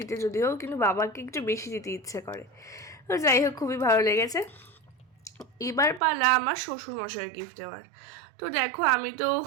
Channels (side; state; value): left; drops out; at 6.0 s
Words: যদিও, কিন্তু বাবাকে একটু বেশি দিতে ইচ্ছে করে। তো যাই হোক, খুবই ভালো লেগেছে। এবার পালা আমার শ্বশুরমশাইয়ের গিফট দেওয়ার। তো দেখো আমি তো